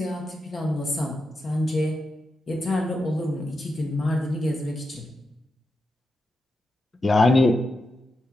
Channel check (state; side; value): normal; both; correlation 0.87